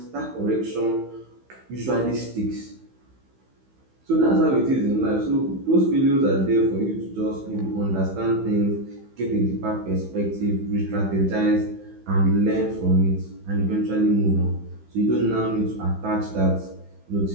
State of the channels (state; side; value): late; left; 15 ms